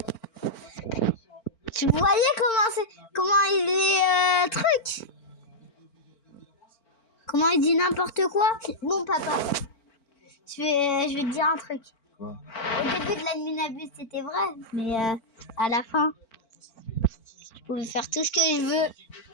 Tu voyais comment il est truc? Comment il dit n'importe quoi? Bon, papa, je vais te dire un truc. Quoi? Au début de l'adminabus, c'était vrai, mais à la fin, je pouvais faire tout ce que je veux.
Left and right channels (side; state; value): right; late; 4.4 ms